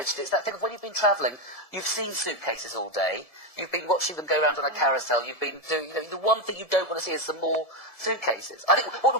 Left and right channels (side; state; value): right; late; 1.7 ms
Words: it. It's that thing of when you've been travelling, you've seen suitcases all day, you've been watching them go around on a carousel, you've been doing, the one thing you don't want to see is some more suitcases. I think what